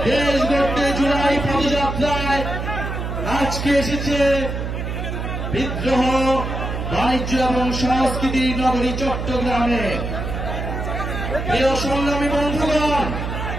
দেশ গড়তে জুলাই পদযাত্রায় আজকে এসেছে বিদ্রোহ বাণিজ্য এবং সংস্কৃতি নগরী চট্টগ্রামে। প্রিয় সংগ্রামী বন্ধুগণ,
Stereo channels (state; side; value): noise; right; hum, 4 dB below the sound